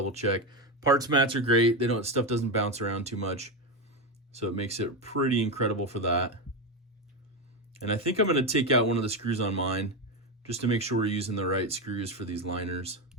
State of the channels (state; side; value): normal; both; correlation 0.12